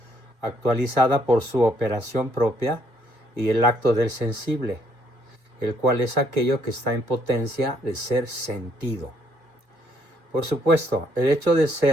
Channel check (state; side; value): late; left; 2.2 ms